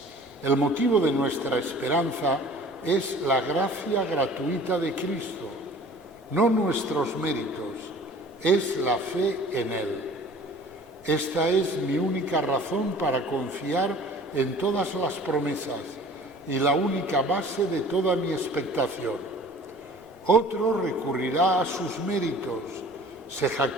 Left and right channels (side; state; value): both; normal; correlation 0.47